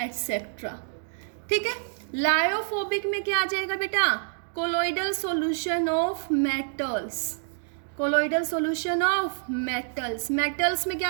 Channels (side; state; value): left; silent; digital silence